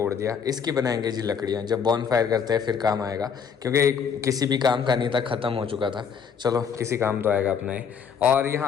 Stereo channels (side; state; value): right; quieter; 6.8 dB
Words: दिया, इसकी बनाएंगे जी लकड़ियाँ, जब बॉन फायर करते हैं फिर काम आएगा, क्योंकि किसी भी काम का नहीं था, ख़त्म हो चुका था। चलो किसी काम तो आएगा अपना ही। और